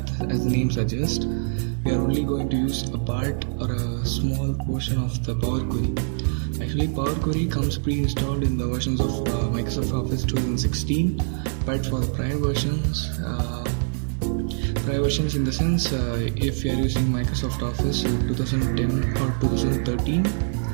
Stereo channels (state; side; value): silent; left; digital silence